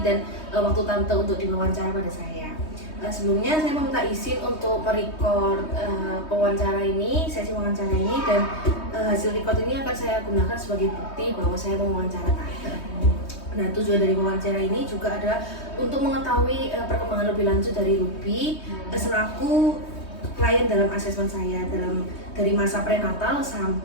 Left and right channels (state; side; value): late; right; 3.2 ms